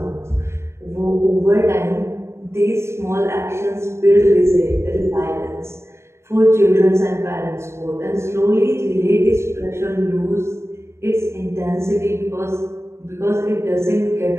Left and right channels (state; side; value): late; left; 0.13 ms